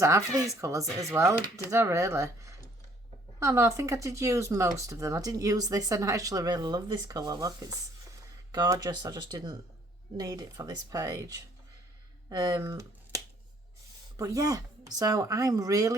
half of these colours as well, did I really? Oh no, I think I did use most of them. I didn't use this, and I actually really love this colour. Look, it's gorgeous. I just didn't need it for this page. But yeah, so I'm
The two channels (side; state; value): both; normal; correlation 0.61